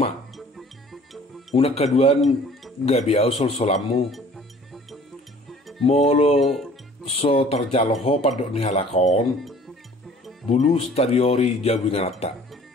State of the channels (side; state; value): both; normal; correlation 0.51